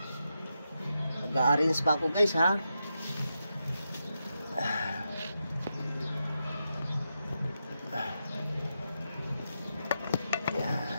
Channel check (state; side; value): inverted; both; correlation -0.86